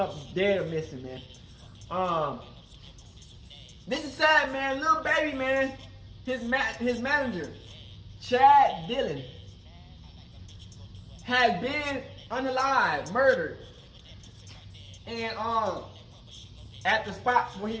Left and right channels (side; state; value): both; identical; correlation 1.00